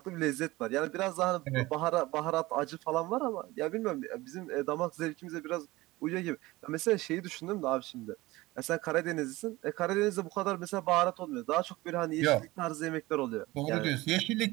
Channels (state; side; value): quieter; left; 19.8 dB